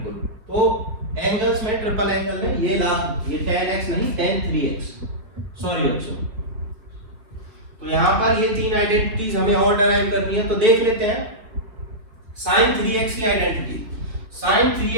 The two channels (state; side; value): late; left; 4.9 ms